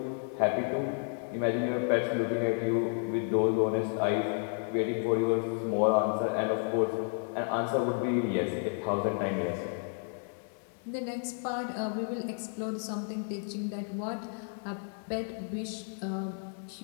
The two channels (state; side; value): silent; right; 57 dB below the other